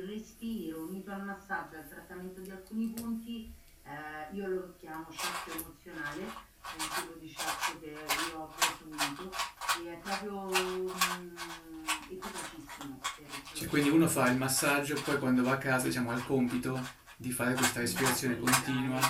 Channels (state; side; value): identical; both; correlation 1.00